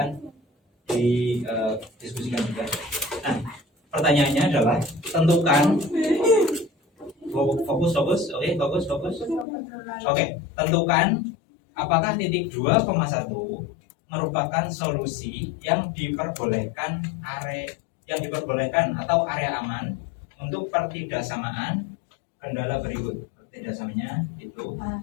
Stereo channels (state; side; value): drops out; right; at 9.5 s